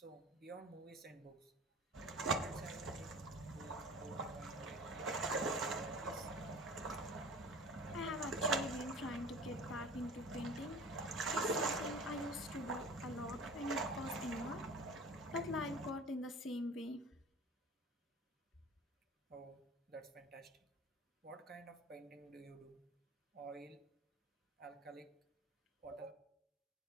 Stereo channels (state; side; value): normal; both; correlation 0.40